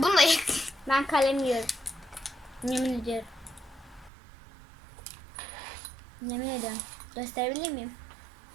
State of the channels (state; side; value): drops out; left; at 4.1 s